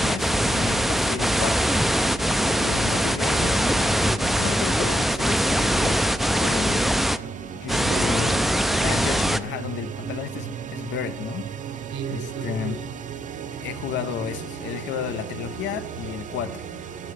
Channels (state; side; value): normal; both; correlation 0.82